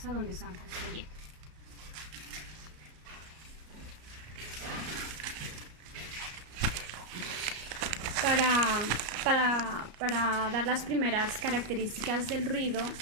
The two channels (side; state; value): left; late; 33 ms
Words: donde están construyendo. Para dar las primeras características del ruido,